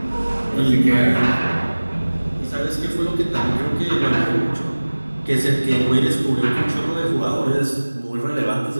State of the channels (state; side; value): inverted; both; correlation -1.00